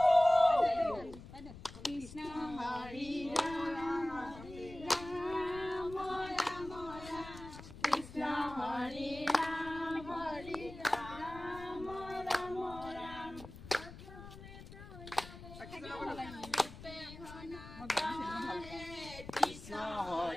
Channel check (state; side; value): noise; left; rumble, 15 dB below the sound